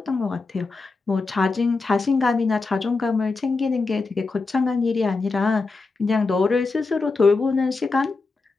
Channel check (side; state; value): right; quieter; 3.9 dB